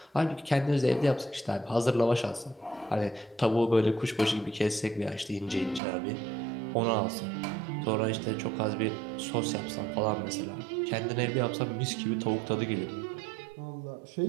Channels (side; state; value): left; drops out; at 5.8 s